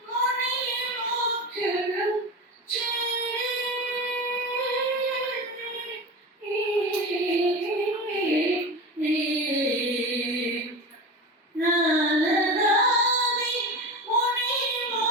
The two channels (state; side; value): normal; both; correlation 0.26